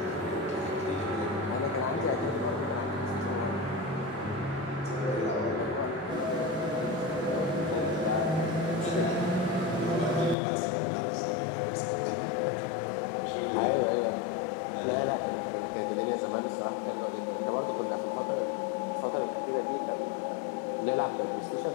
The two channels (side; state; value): right; drops out; at 10.4 s